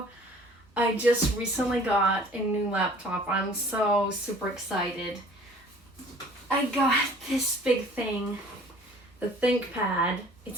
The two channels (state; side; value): normal; both; correlation 0.51